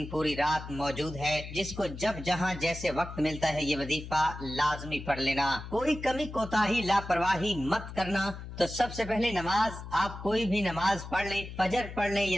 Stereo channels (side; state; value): left; noise; hum, 11 dB below the sound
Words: पूरी रात मौजूद है। जिसको जब जहाँ जैसे वक्त मिलता है ये वजीफा लाजमी पढ़ लेना। कोई कमी कोताही लापरवाही मत करना। तो सबसे पहले नमाज, आप कोई भी नमाज पढ़ लें, फजर पढ़ लें